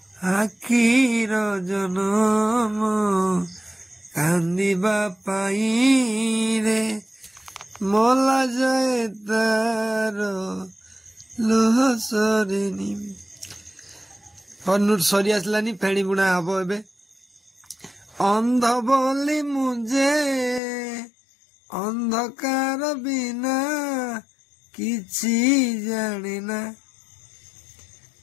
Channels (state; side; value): drops out; right; at 20.6 s